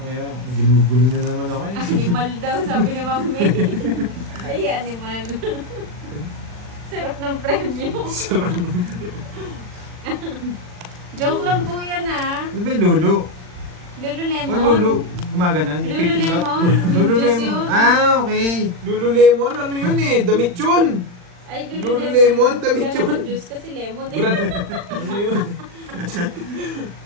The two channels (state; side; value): late; left; 40 ms